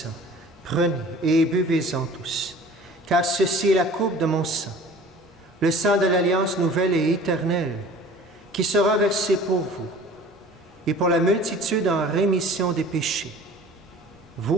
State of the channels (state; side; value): normal; both; correlation 0.46